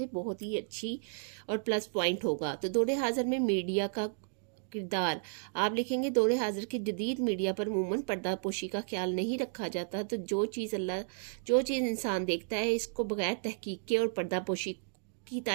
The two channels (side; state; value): left; silent; digital silence